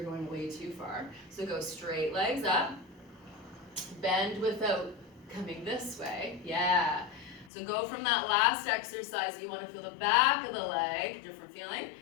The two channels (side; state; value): right; drops out; at 7.5 s